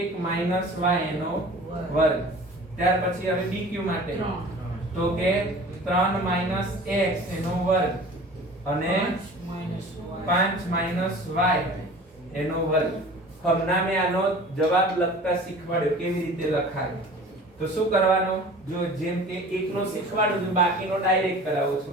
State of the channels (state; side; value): normal; both; correlation 0.42